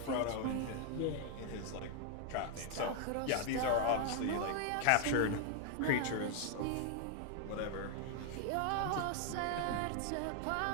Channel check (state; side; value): different; both; correlation 0.00